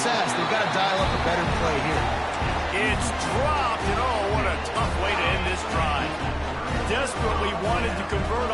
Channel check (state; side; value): identical; both; correlation 1.00